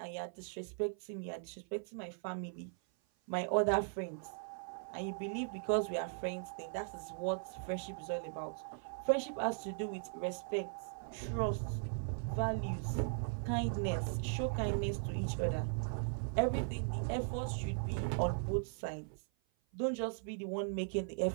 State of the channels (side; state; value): left; silent; 52 dB below the other